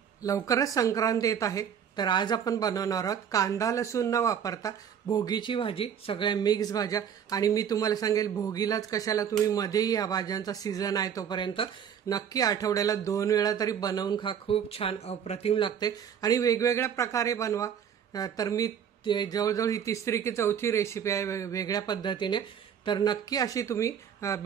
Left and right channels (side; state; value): left; quieter; 8.2 dB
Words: लवकरच संक्रांत येत आहे, तर आज आपण बनवणार आहोत कांदा लसूण न वापरता भोगीची भाजी, सगळ्या मिक्स भाज्या। आणि मी तुम्हाला सांगेल भोगीलाच कशाला, तुम्ही मध्येही या भाज्यांचा सीझन आहे तोपर्यंत नक्की आठवड्याला 2 वेळा तरी बनवून खा, खूप छान अप्रतिम लागते। आणि वेगवेगळ्या प्रकारे बनवा। तर मी जवळजवळ ही तिसरी की चौथी रेसिपी आहे वेगळ्या पद्धतीने, तर नक्की अशी तुम्ही